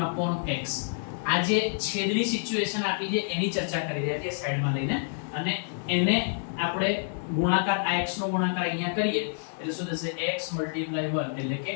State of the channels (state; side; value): silent; right; digital silence